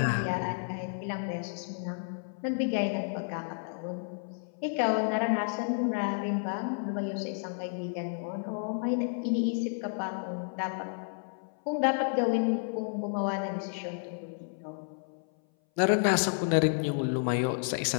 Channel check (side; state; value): right; silent; 57 dB below the other